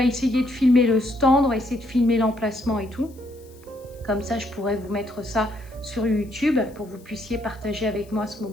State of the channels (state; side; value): noise; left; hiss, 28 dB below the sound